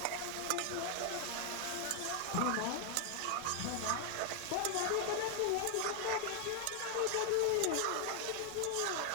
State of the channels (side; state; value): both; different; correlation 0.00